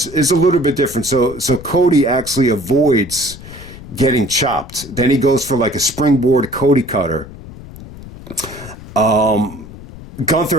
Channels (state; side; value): noise; left; rumble, 16 dB below the sound